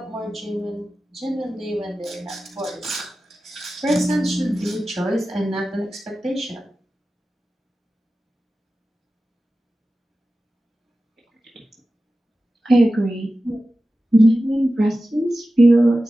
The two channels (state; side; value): normal; both; correlation 0.94